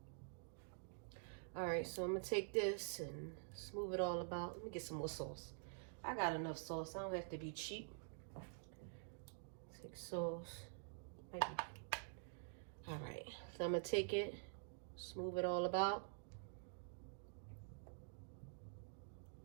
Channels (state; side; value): silent; left; digital silence